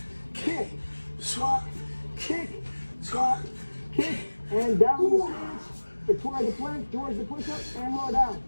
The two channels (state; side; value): inverted; both; correlation -1.00